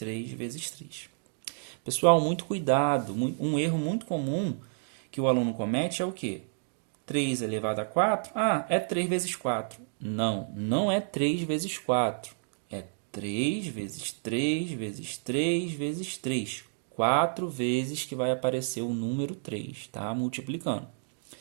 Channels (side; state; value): left; silent; digital silence